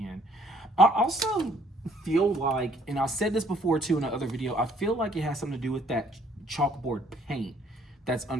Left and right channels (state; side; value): normal; both; correlation 0.63